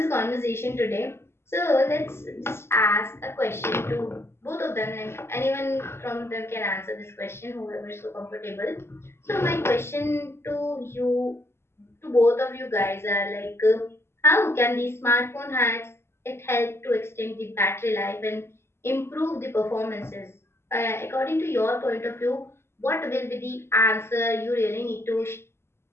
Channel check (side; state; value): right; late; 0.12 ms